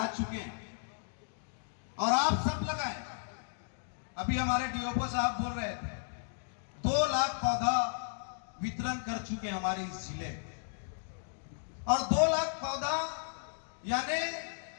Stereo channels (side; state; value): right; silent; digital silence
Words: चुके हैं और आप सब लगाएं। अभी हमारे डीओपो साहब बोल रहे थे 2 लाख पौधा वितरण कर चुके हैं हमारे इस जिले में, और 2 लाख पौधा यानी